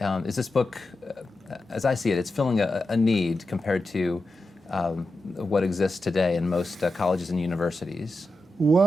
Is this book, as I see it, it's filling a need compared to what exists today in most colleges and universities?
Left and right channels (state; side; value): normal; both; correlation 0.90